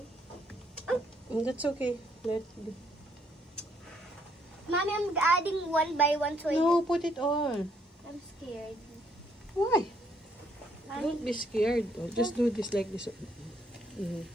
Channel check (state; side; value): normal; both; correlation 0.70